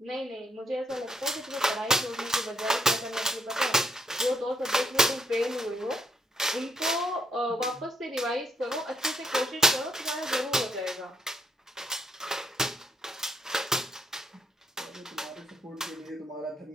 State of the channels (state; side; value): normal; both; correlation 0.74